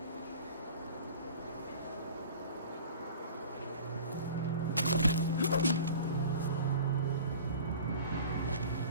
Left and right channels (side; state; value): both; inverted; correlation -0.42